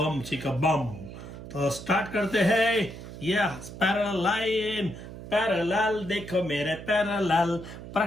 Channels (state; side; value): noise; right; hum, 12 dB below the sound